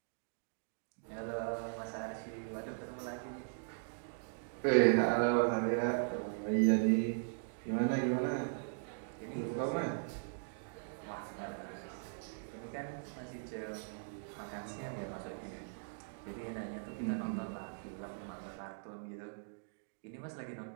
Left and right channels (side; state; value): left; silent; digital silence